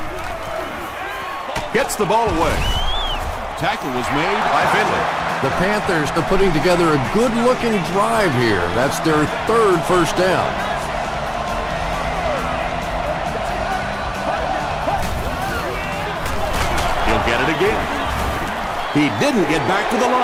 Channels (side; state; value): both; identical; correlation 1.00